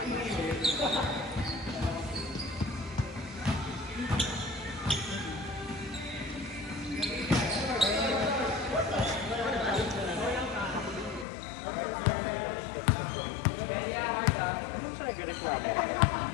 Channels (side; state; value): right; drops out; at 11.2 s